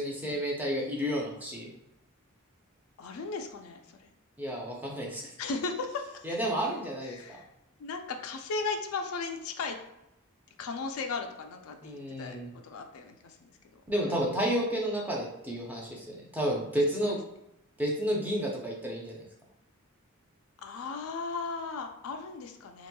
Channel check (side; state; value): both; normal; correlation 0.31